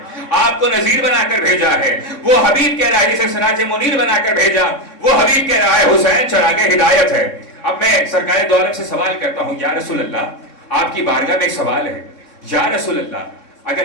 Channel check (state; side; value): late; right; 3.6 ms